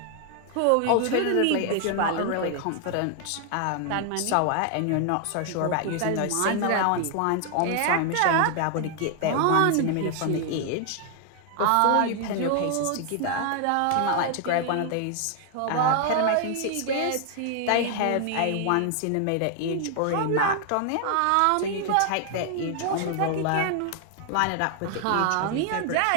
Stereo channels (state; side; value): different; both; correlation 0.00